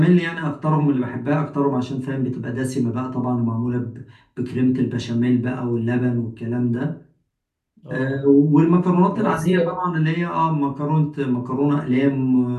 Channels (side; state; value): both; identical; correlation 1.00